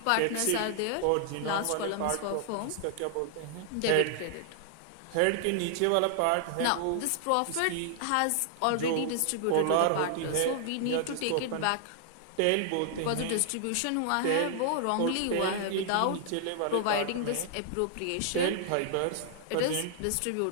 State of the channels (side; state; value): both; different; correlation -0.01